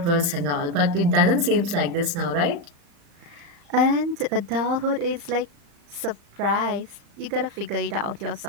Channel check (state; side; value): late; left; 35 ms